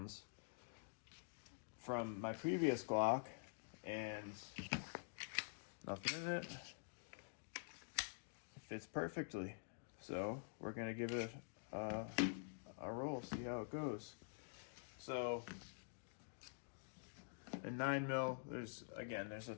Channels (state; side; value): silent; right; digital silence